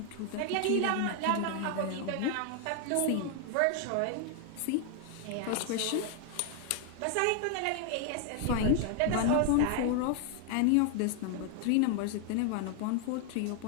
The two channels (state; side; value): different; both; correlation 0.00